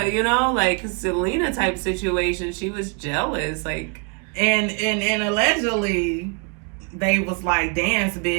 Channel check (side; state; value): left; quieter; 36.4 dB